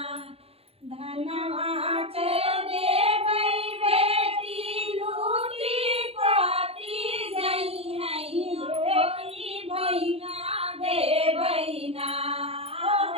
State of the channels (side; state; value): left; late; 0.29 ms